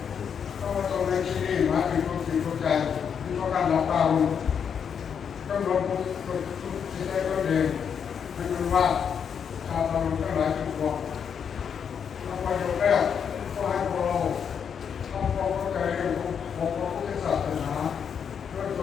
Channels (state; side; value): quieter; right; 7.3 dB